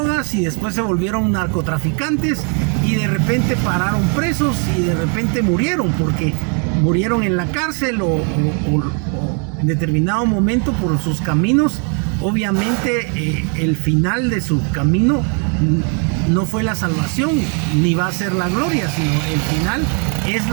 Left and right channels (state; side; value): quieter; left; 39.5 dB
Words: y después se volvieron narcotraficantes, y de repente pararon presos y de repente murieron, porque murieron en la cárcel o en determinado momento por sus caminos. Obviamente el final de su camino no fue la salvación ni va a ser la gloria, sino el final es